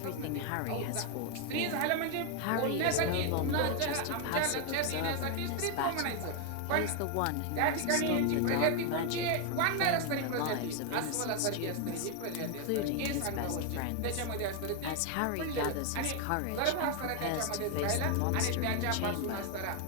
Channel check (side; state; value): both; different; correlation 0.01